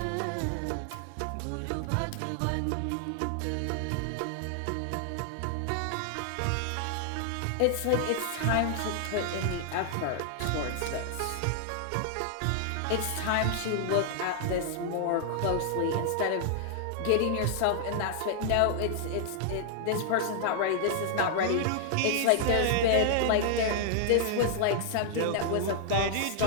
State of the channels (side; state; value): both; different; correlation -0.01